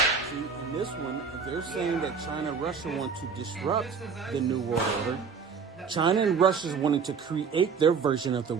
See, in this one, they're saying that China and Russia want to disrupt the New World Order. China and Russia is wanting to create their version of the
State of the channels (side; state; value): left; quieter; 5.8 dB